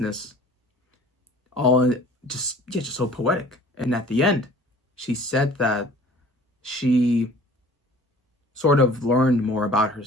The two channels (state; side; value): normal; both; correlation 0.49